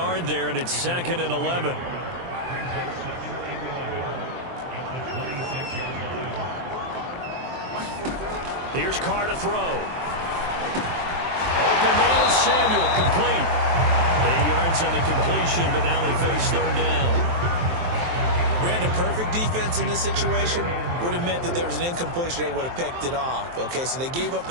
there, and it's 2nd and 11. Here's Carr to throw. Open man is Samuel, complete. 8 yards on the completion, but now they face 3rd down. Brandon, perfect defense in this situation would have meant that there was an incompletion. They would have picked it off. Okay, so they gave up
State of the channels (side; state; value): left; late; 23 ms